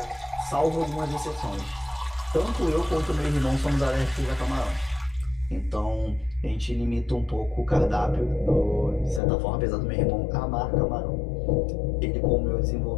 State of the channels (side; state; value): right; drops out; at 9.2 s